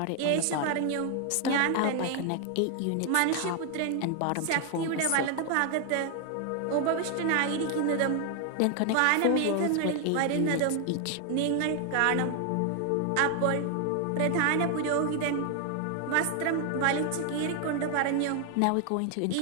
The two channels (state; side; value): different; both; correlation 0.00